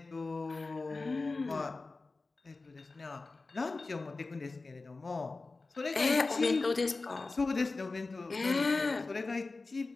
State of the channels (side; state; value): right; quieter; 3.6 dB